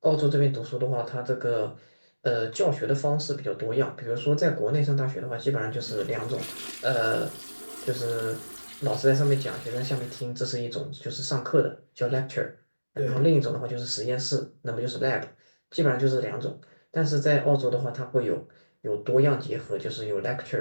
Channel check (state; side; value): inverted; both; correlation -1.00